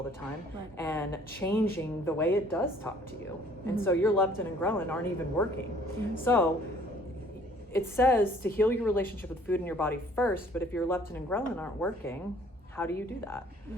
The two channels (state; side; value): normal; both; correlation 0.57